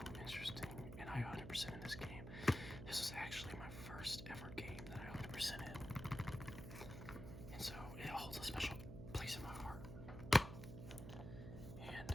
interesting, and I 100% in this game. This was actually my first ever game that I 100% in. And so it holds a special place in my heart. And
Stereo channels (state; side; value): noise; right; hum, 9 dB below the sound